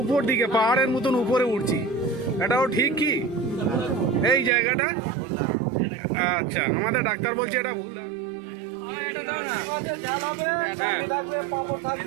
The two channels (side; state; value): left; drops out; at 4.5 s